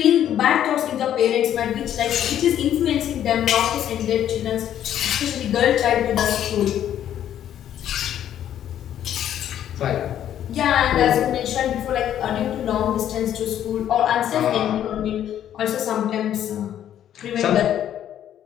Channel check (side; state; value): right; quieter; 10.7 dB